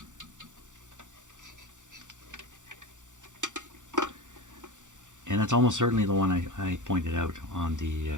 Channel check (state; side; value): late; left; 0.86 ms